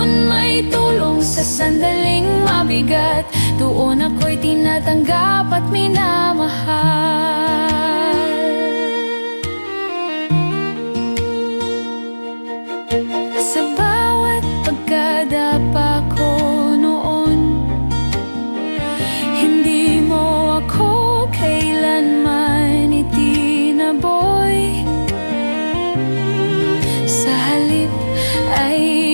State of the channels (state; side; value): inverted; both; correlation -1.00